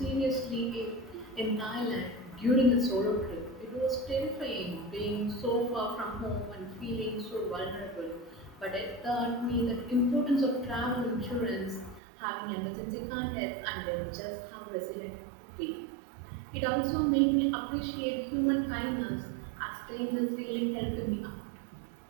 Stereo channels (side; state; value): left; drops out; at 12.0 s